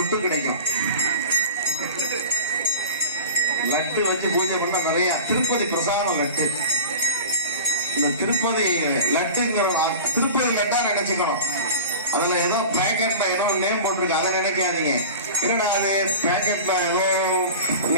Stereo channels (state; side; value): inverted; both; correlation -0.35